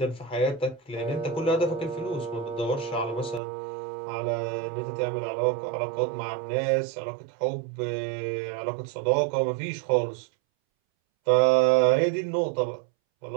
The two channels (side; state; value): left; drops out; at 3.4 s